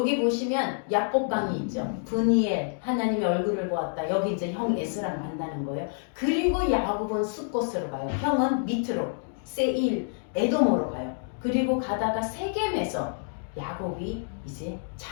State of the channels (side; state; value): right; silent; digital silence